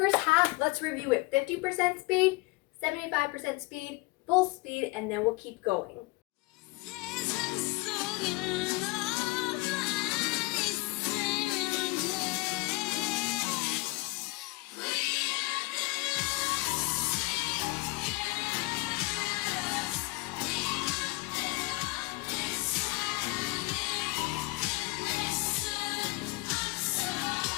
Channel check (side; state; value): right; quieter; 23.8 dB